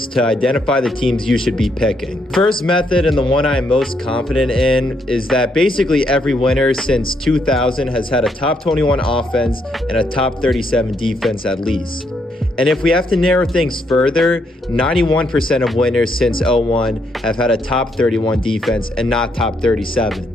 to identify the teams you should be picking. First method, and the one I am most confident in, is that basically every winner since 2000 has had a top 21 offense and a top 37 defense at least. And if we have to narrow things further, 91% of winners since 01 have had a top 31 defense and not top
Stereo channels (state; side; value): normal; both; correlation 0.75